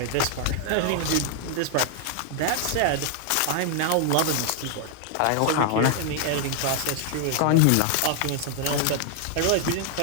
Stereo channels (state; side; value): different; both; correlation 0.00